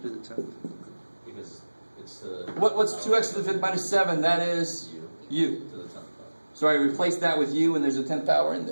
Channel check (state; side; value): inverted; both; correlation -1.00